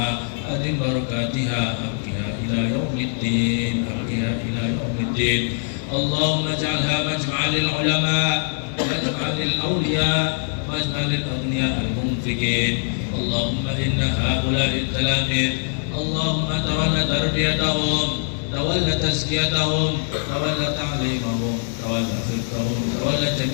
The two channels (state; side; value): silent; right; digital silence